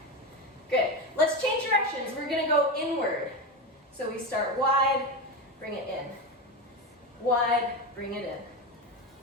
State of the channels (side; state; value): both; normal; correlation 0.17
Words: good. Let's change directions. We're gonna go inward. So we start wide, bring it in. Wide, bring it